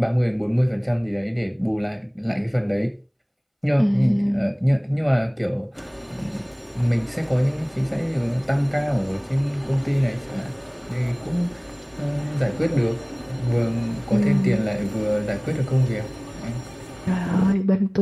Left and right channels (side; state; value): both; identical; correlation 1.00